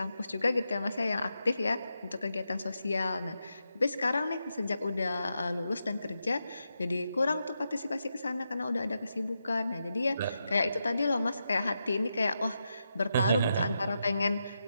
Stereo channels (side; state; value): both; inverted; correlation -0.86